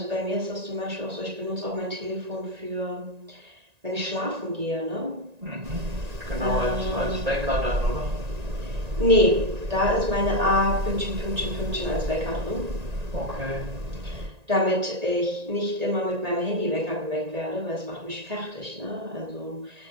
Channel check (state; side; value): late; left; 1.9 ms